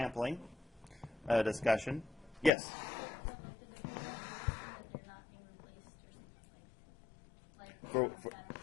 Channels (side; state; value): right; drops out; at 2.5 s